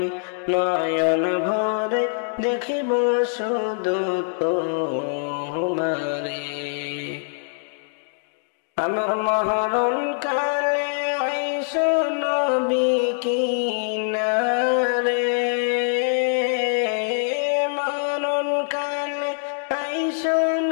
নয়ন ভরে দেখিব শুধু তোমারে আমার মরণ কালে আইসো নবী কিনারে মরণ কালে আইসো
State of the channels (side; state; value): right; silent; digital silence